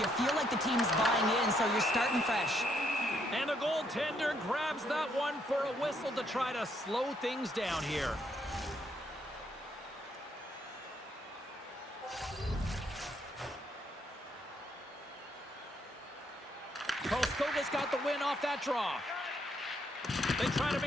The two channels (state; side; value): normal; both; correlation 0.73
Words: feel like the team's buying in, so you're starting fresh. And the goaltender grabs that one for a whistle to try to slow things down here. Karlskoga's got the win off that draw. They try to